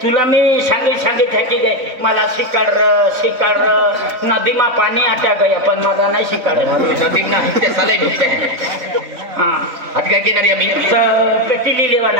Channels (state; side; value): late; left; 3.5 ms